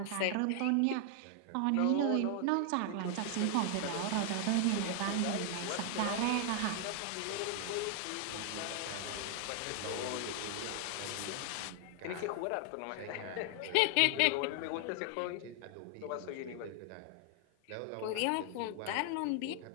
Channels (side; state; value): both; different; correlation 0.00